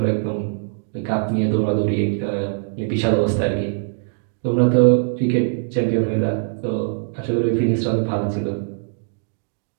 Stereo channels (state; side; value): silent; left; digital silence